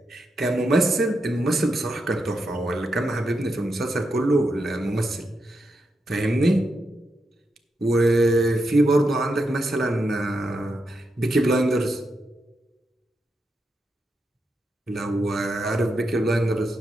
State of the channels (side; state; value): both; normal; correlation 0.85